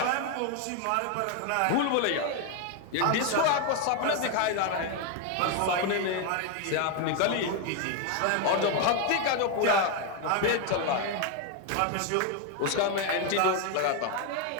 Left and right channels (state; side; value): different; both; correlation 0.01